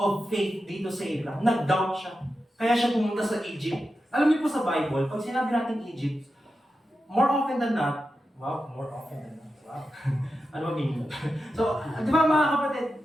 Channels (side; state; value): both; normal; correlation 0.90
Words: faith dito sa Abraham. Nag-doubt siya. Kaya siya pumunta sa Egypt. Alam niyo po sa Bible, pag sinabi natin Egypt, more often than not, wow. Ano ba meaning? So, di ba mga kapatid,